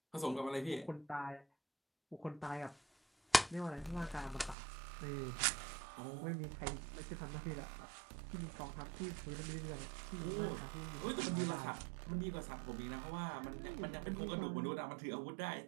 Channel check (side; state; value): left; drops out; at 4.5 s